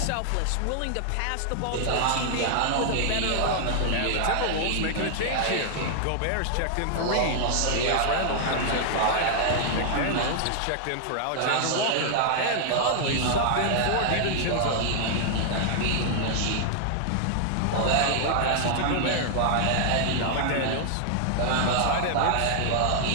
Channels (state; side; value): different; both; correlation -0.01